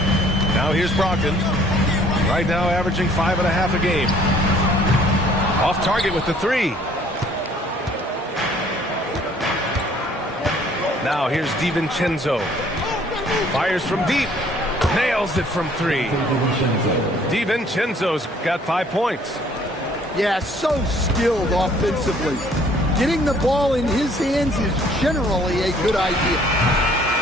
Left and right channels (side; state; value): both; normal; correlation 0.58